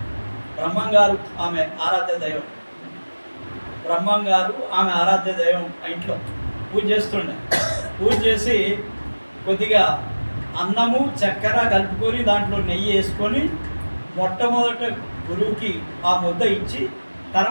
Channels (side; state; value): both; inverted; correlation -1.00